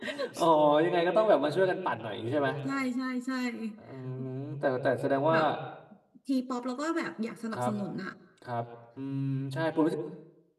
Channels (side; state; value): both; identical; correlation 1.00